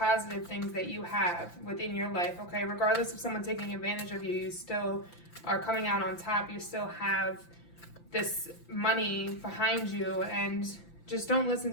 things that you have within your life, okay? Regardless of someone taking advantage of you, you still are coming out on top. You still have this money behind you, and just don't listen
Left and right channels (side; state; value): right; late; 5.8 ms